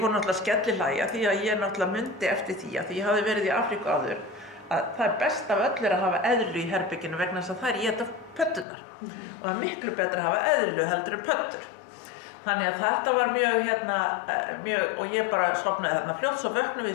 náttúrulega skellihlæja því að ég náttúrulega mundi eftir því að ég hafði verið í Afríku áður að það best af öllu að hafa eðlu í herberginu vegna þess að það éta pöddunar. Og það miklu betra að hafa eðlu heldur en pöddur. Þannig að þetta var mjög, og ég bara sofnaði þarna fljótt, svo vöknum við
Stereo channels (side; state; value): right; drops out; at 8.7 s